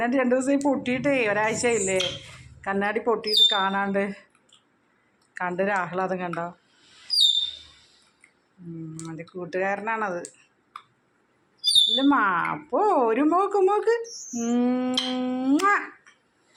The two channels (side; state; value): both; identical; correlation 1.00